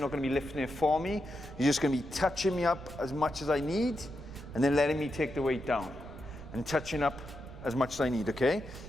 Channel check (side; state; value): right; noise; rumble, 13 dB below the sound